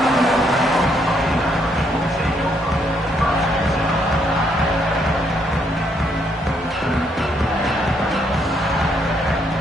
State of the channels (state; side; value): normal; both; correlation 0.72